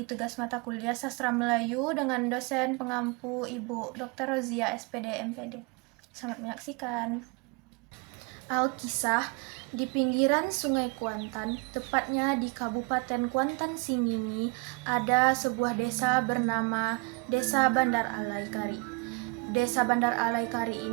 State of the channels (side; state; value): left; quieter; 28.8 dB